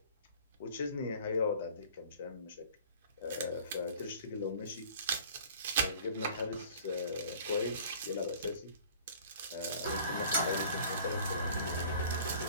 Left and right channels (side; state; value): both; inverted; correlation -0.48